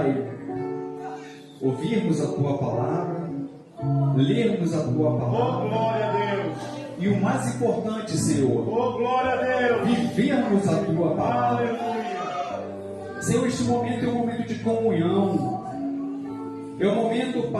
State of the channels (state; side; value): identical; both; correlation 1.00